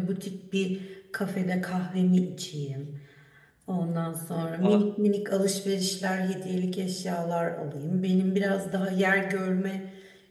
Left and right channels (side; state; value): both; identical; correlation 1.00